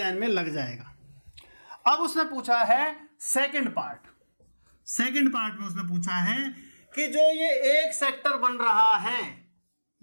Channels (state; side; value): inverted; both; correlation -1.00